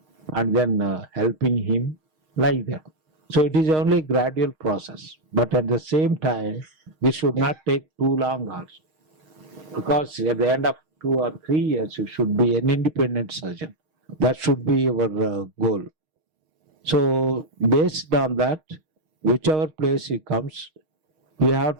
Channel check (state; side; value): late; left; 6.4 ms